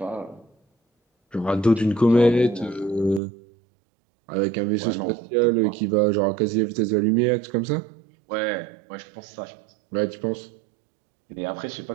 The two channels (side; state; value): left; drops out; at 3.2 s